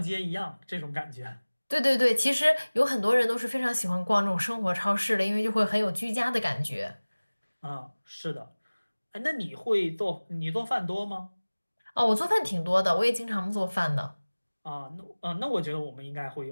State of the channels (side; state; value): both; inverted; correlation -1.00